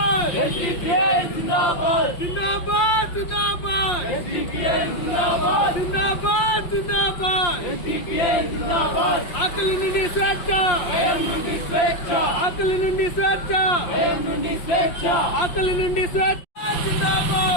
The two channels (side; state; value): right; late; 5.6 ms